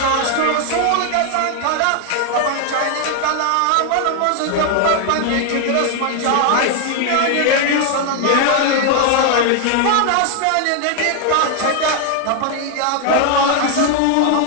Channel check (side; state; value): both; different; correlation 0.00